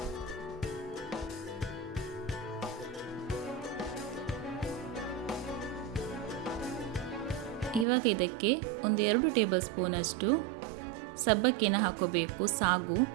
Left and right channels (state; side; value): drops out; left; at 7.9 s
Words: ಇವಾಗ ಇದಕ್ಕೆ 2 ಟೇಬಲ್ ಸ್ಪೂನಷ್ಟು ಸಬ್ಬಕ್ಕಿನ ಹಾಕೋಬೇಕು, ಸಾಗು.